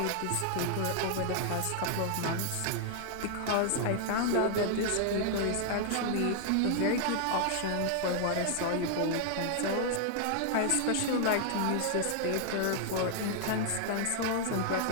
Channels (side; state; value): both; different; correlation 0.00